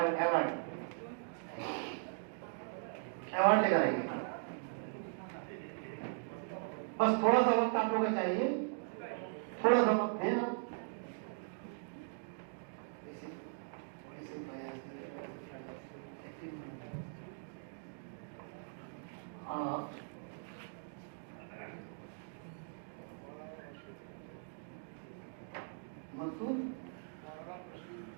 अवार्ड लेकर आइए। बस थोड़ा सा वक्त आप लोगों को चाहिए, थोड़ा सा वक्त दें आप।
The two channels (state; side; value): silent; left; digital silence